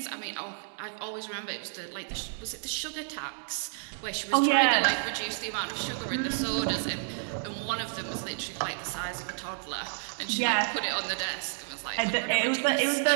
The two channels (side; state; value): left; silent; digital silence